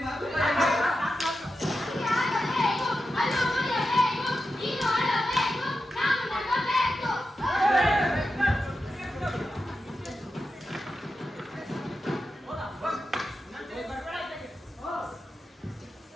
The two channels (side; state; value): both; normal; correlation 0.90